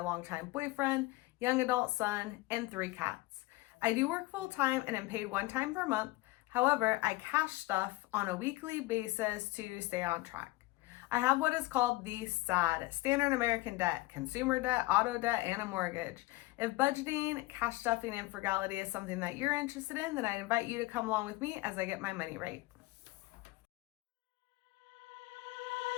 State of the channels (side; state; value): right; quieter; 20.6 dB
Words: boyfriend, young adult son, and 3 cats. I do work full time and am paid one time per month. However, I cash stuff on a weekly basis to stay on track. I have what is called the SAD, Standard American Debt, consumer debt, auto debt, and a mortgage. If budgeting, cash stuffing, and frugality is something that you're interested in, then I invite you to come along with me as I get my money right.